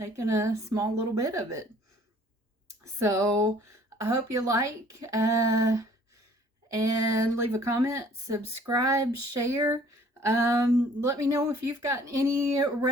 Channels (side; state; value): both; normal; correlation 0.55